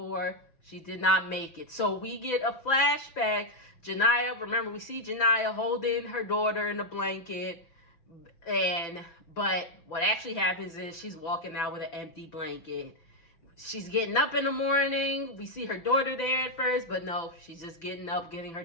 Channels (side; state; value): right; late; 6.0 ms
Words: she did not make it. So we get a flashback. Janaya, remember, we see Janaya holding her daughter in a blanket, but what actually happens is she's walking out with an empty blanket. She's getting up in the morning. We see her daughter there at first, but no, she's just getting up, getting her